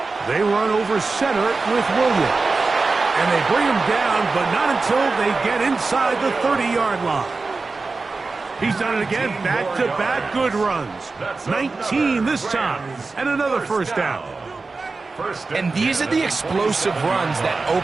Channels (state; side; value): quieter; left; 3.9 dB